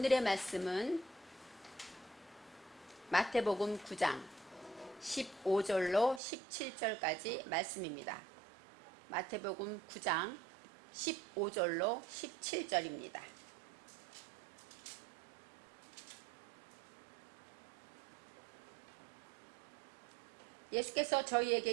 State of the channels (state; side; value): drops out; left; at 6.2 s